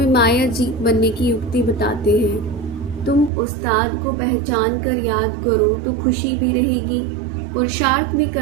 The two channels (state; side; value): drops out; left; at 3.3 s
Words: माया जीत बनने की युक्ति बताते हैं। तुम उस्ताद को पहचान कर याद करो तो खुशी भी रहेगी, पुरुषार्थ भी